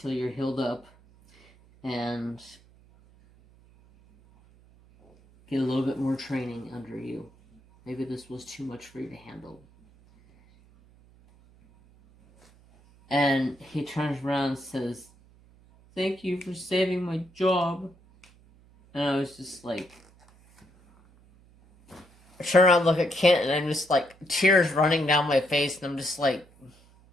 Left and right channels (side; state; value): right; noise; hum, 28 dB below the sound